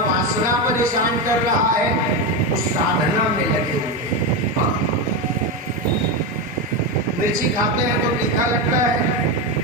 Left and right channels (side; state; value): both; normal; correlation 0.13